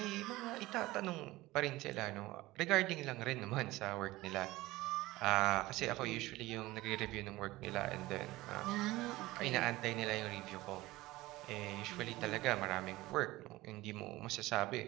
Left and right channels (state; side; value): quieter; left; 18.7 dB